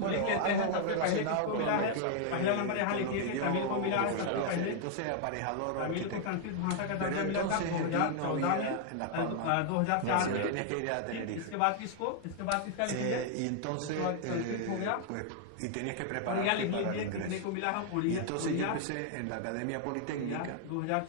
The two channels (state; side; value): different; both; correlation 0.00